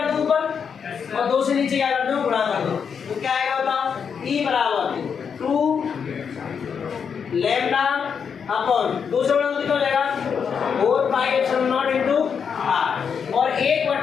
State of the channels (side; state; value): right; quieter; 6.7 dB